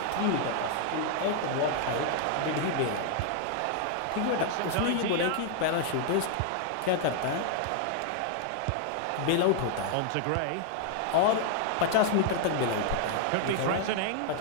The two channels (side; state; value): both; different; correlation 0.00